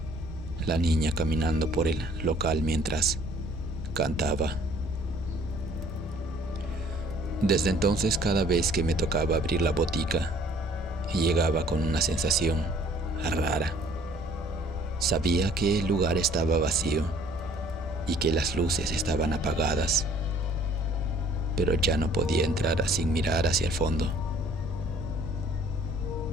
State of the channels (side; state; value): both; normal; correlation 0.56